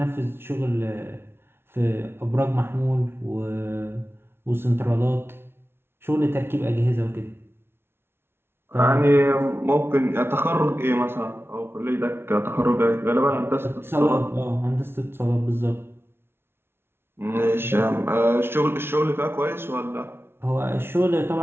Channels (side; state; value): left; late; 0.12 ms